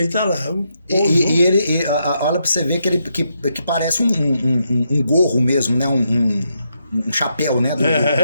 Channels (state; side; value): inverted; both; correlation -0.80